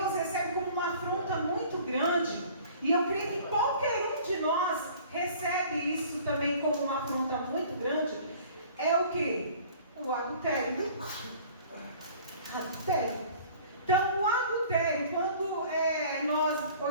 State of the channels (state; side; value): inverted; both; correlation -0.49